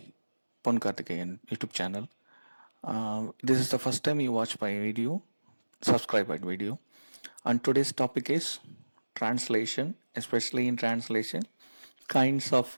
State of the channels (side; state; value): both; inverted; correlation -1.00